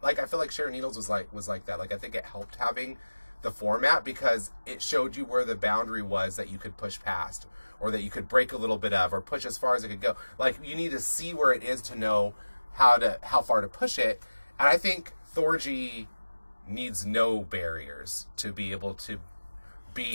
Like, I feel like Sharon Needles was like that. Like, I think it helped having the format because it showed you where the boundary was that you could push past, or that you could break a little bit of, or push as far as it could go. Like, you need to see where it is to know how far to push it. And I think Thorgy needs no barriers to be able to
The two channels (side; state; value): both; inverted; correlation -1.00